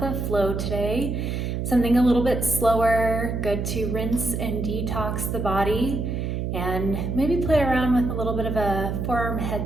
flow today. Something a little bit slower, good to rinse and detox the body, and maybe play around with a little bit of a forearm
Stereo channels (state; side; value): noise; right; hum, 2 dB below the sound